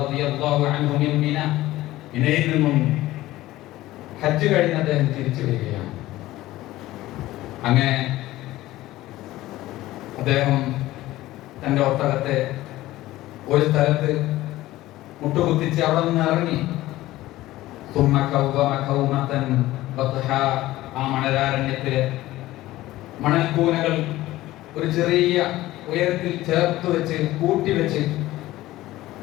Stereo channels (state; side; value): quieter; right; 16.5 dB